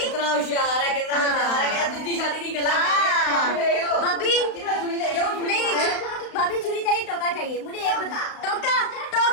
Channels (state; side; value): late; right; 35 ms